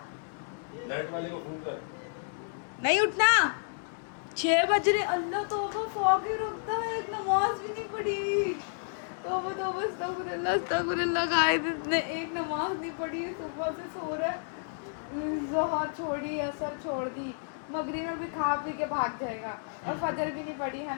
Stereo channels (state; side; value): silent; right; digital silence